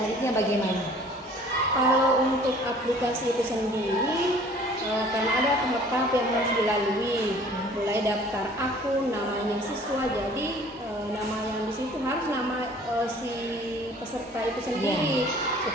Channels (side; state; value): both; normal; correlation 0.51